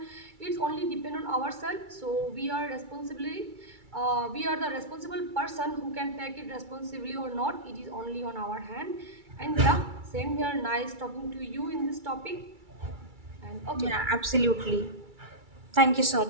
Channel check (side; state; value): left; late; 2.3 ms